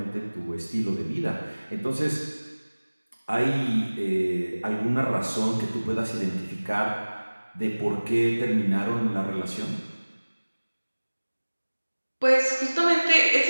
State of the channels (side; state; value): both; inverted; correlation -1.00